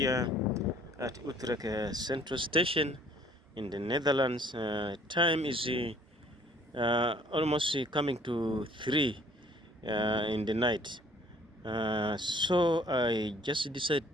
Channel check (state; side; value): normal; both; correlation 0.57